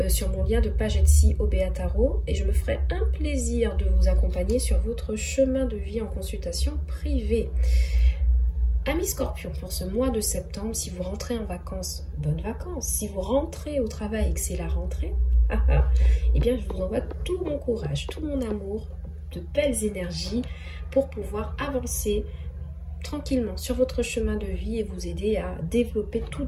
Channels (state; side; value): identical; both; correlation 1.00